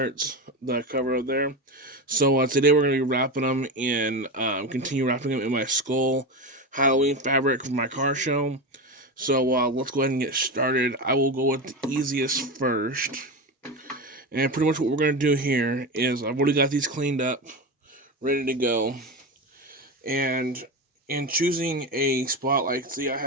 the cover up there. So today we're going to be wrapping them in, continue wrapping them in my skull Halloween fabric for my car show. So let's go ahead and get started. I will go with the easiest first. And pretty much what we're going to do here is I've already got these cleaned up, ready to go. And in choosing a spot, like, see, I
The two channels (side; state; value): both; normal; correlation 0.20